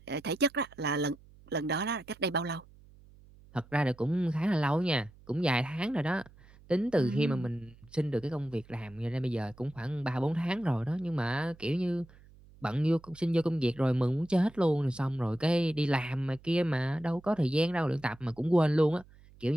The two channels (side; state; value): right; noise; hum, 24 dB below the sound